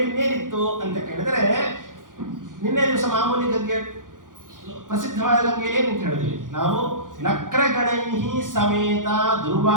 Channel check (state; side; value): late; left; 0.89 ms